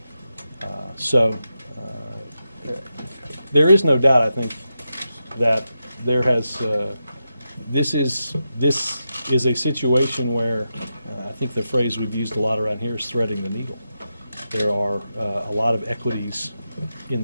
So there is no doubt, I think, that there has this is a situation where I think the phrase we've used a lot around here is threading the needle. There are a lot of equities in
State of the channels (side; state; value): both; inverted; correlation -0.88